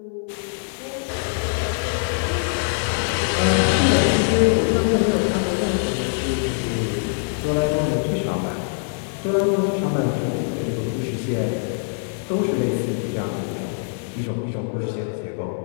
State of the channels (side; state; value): right; silent; 63 dB below the other